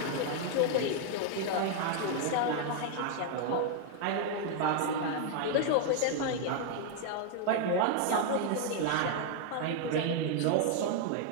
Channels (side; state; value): both; different; correlation 0.00